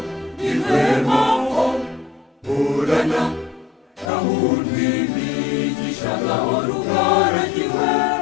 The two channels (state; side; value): drops out; right; at 4.1 s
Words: irwemaho burana gahunda imigisha gahora ugaragiwe